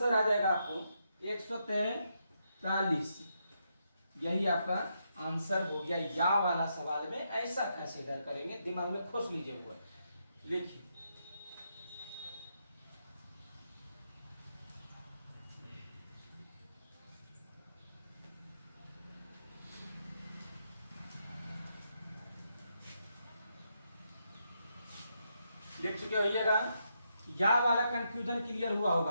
आ जाएगा आपको 143। यही आपका आंसर हो गया। या वाला सवाल में ऐसा कंसीडर करेंगे, दिमाग में खोज लीजिए हुआ, लिखिए। लिख चुके होइएगा। या वाला कंफ्यूजन क्लियर हुआ होगा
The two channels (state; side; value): inverted; both; correlation -0.81